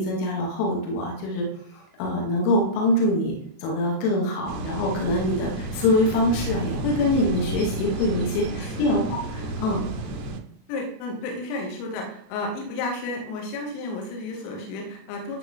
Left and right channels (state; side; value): late; right; 37 ms